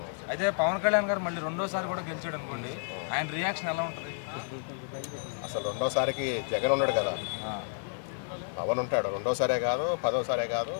అయితే పవన్ కళ్యాణ్ గారు మళ్ళీ రెండోసారి కూడా గెలిచాడు అనుకోండి, ఆయన రియాక్షన్ ఎలా ఉంటుంది? అసలు రెండోసారికి జగన్ ఉన్నాడు కదా, పవన్ ఉంటాడు. రెండోసారే కాదు, పదోసారే కాదు,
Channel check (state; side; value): silent; right; digital silence